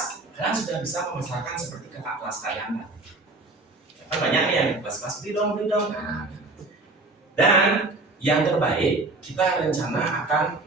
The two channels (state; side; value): quieter; left; 3.1 dB